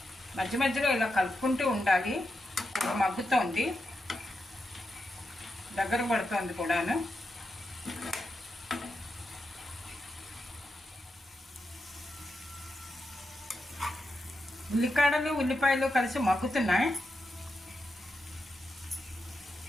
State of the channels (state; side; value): normal; both; correlation 0.87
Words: మధ్య మధ్యలో ఇలా కలుపుకుంటూ ఉండాలి. మగ్గుతోంది, దగ్గర పడుతోంది కూడాను. ఉల్లికాడలు ఉల్లిపాయలు కలిసి మగ్గుతున్నాయి.